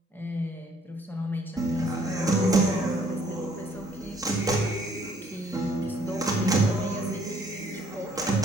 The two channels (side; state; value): both; normal; correlation 0.63